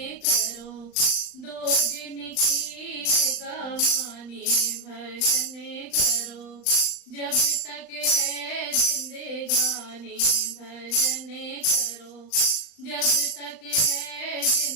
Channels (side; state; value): right; late; 39 ms